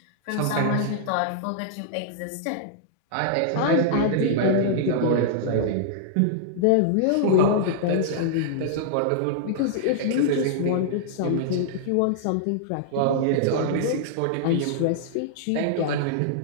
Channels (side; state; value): both; different; correlation -0.01